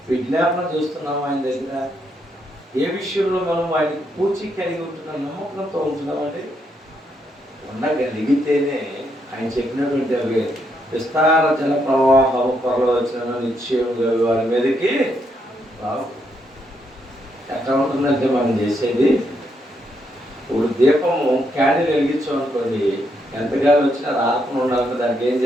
విజ్ఞాపన చేస్తున్నాము ఆయన దగ్గర. ఏ విషయంలో మనం ఆయనకి పూచి కలిగి ఉంటున్నాం, నమ్మకంతో ఉంటున్నామండి. ఉండగలిగితేనే ఆయన చెప్పినటువంటి అవి విస్తార జల ప్రవాహం పొరలో వచ్చిన నిశ్చయంగా వారి మీదకి రావు. ఎట్లా ఉంటుందంటే మనం చేసేది, ఇప్పుడు దీపము క్యాండిల్ వెలిగించామనుకోండి, ఎంతగానో వచ్చినా రాకుండా ఉండాలంటే దానికి ఏం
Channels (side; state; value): both; normal; correlation 0.77